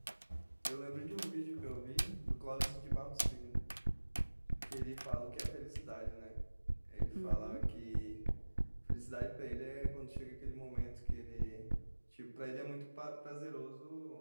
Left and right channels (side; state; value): both; inverted; correlation -1.00